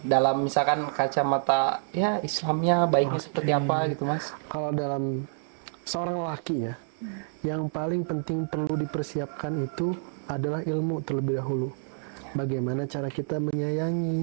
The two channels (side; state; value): left; silent; digital silence